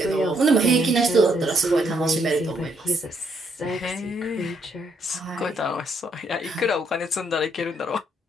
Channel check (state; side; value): normal; both; correlation 0.73